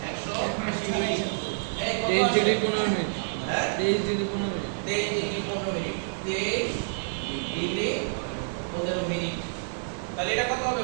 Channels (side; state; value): left; silent; digital silence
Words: 180 ডিগ্রি। এই কত 23 আসে? Degree 15 minute. হ্যাঁ 23 degree 15 minute. 23 degree 15 minute. 23 degree 15 minute. তাহলে এটা কত হবে